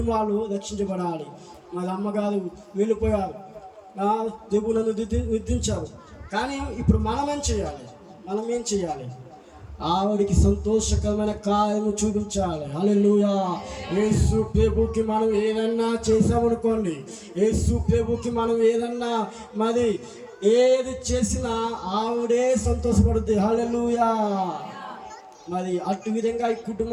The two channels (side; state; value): both; identical; correlation 1.00